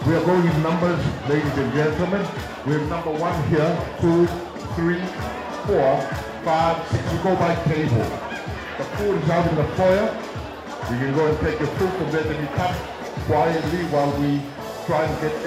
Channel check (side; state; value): both; identical; correlation 1.00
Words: We are going in numbers, ladies and gentlemen. We have number 1 here, 2, 3, 4, 5, 6. We go by table. The food is out in the foyer. You can go and take your food from there, then you come quietly while we try and get